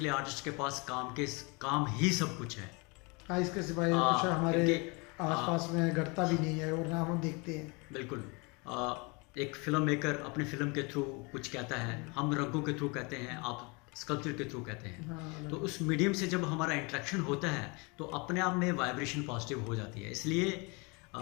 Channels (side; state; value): right; quieter; 29.3 dB